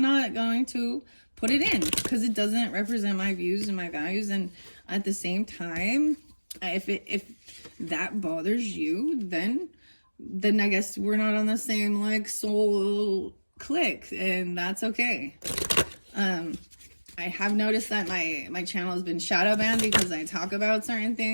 not going to put it in, because it doesn't represent my views and my values. And at the same time, if that bothers you, then I guess we're not on the same like soul click, and that's okay. I have noticed that my channel has been shadow banned because I talk about certain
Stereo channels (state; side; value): inverted; both; correlation -1.00